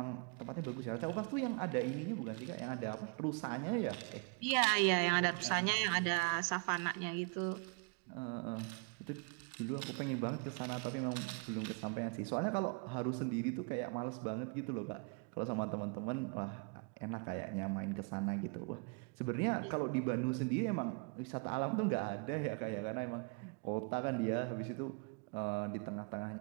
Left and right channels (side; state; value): left; quieter; 35.2 dB